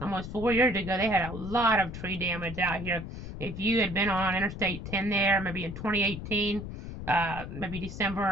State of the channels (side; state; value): left; noise; rumble, 9 dB below the sound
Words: 4 years ago. They had a lot of tree damage out here. If you had been on Interstate 10 there, maybe in 2018, maybe